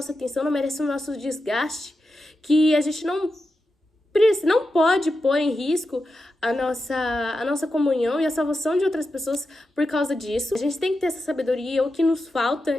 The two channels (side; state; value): both; normal; correlation 0.89